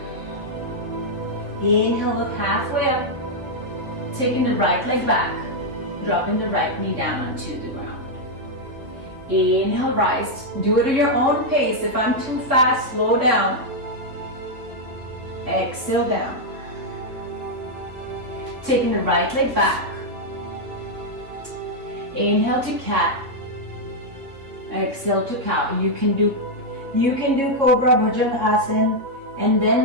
Inhale, look halfway up. Taking the right leg back. Dropping the right knee down onto the ground. Inhale, rise. Do it at your own pace. If I'm too fast, slow down. Exhale, down. Taking the right leg back. Inhale to cat. Exhale to cow. You can do Cobra Bhujangasana, and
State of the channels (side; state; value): left; late; 3.3 ms